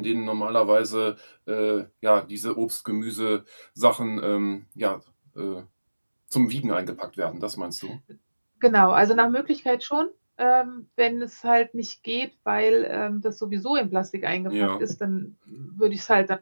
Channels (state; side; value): inverted; both; correlation -1.00